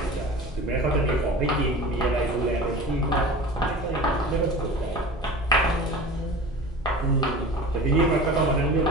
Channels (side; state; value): both; normal; correlation 0.37